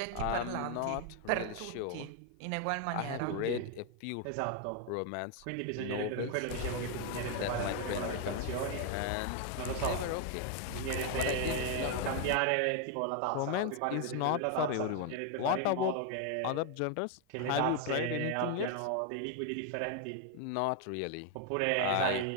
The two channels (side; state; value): both; different; correlation 0.01